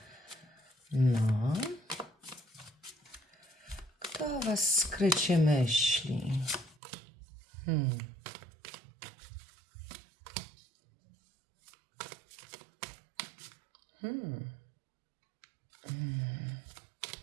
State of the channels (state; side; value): drops out; left; at 6.8 s